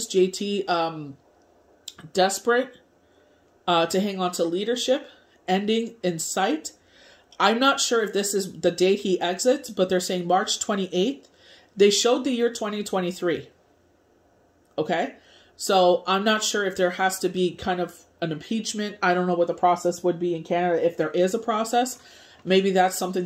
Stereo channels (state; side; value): identical; both; correlation 1.00